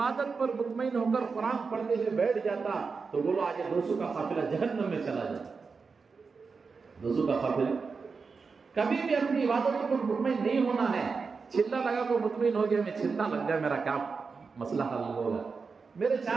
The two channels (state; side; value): quieter; left; 4.9 dB